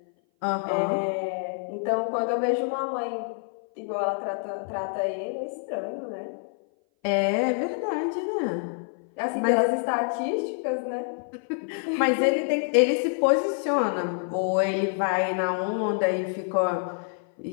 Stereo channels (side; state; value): right; silent; 57 dB below the other